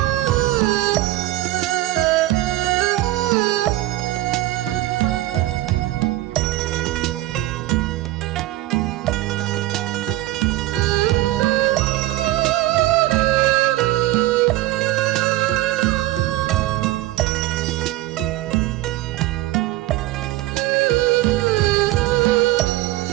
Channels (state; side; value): quieter; left; 16.8 dB